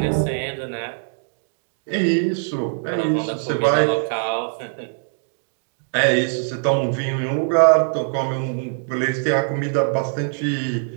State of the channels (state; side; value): silent; left; 64 dB below the other